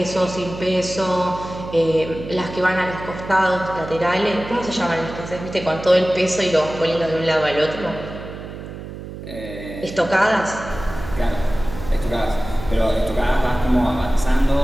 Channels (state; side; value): noise; right; hum, 11 dB below the sound